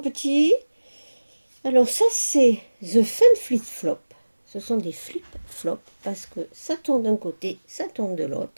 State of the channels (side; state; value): both; inverted; correlation -1.00